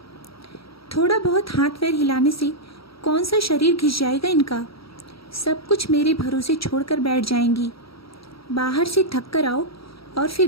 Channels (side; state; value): right; late; 0.76 ms